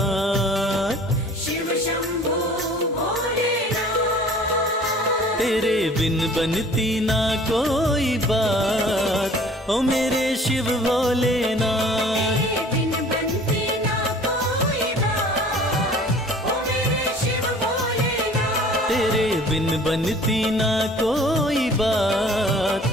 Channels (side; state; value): both; normal; correlation 0.49